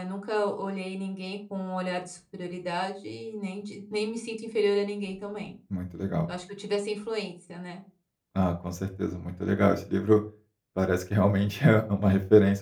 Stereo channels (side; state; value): both; identical; correlation 1.00